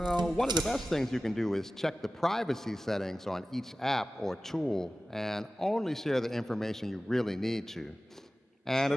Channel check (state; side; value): normal; both; correlation 0.96